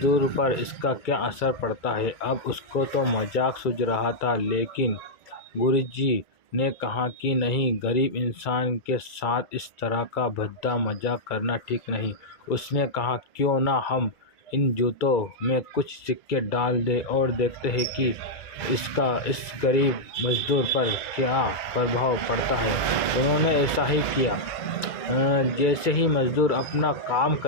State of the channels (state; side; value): late; right; 2.3 ms